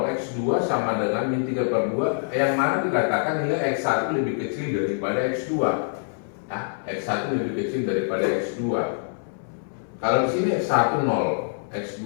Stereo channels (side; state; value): right; silent; 58 dB below the other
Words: X2 sama dengan min 3/2, yang mana dikatakan nilai X1 lebih kecil daripada X2. Nah, X1 lebih kecil daripada X2. Kalau di sini X1 0,